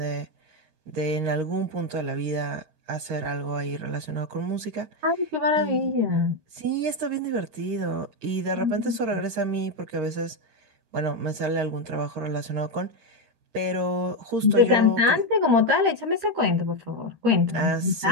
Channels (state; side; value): late; left; 13 ms